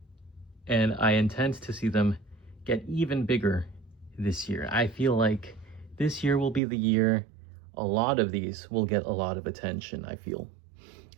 and I intend to see them get even bigger this year. I feel like this year will be the year a lot of these will get a lot of attention. I feel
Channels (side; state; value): left; drops out; at 6.6 s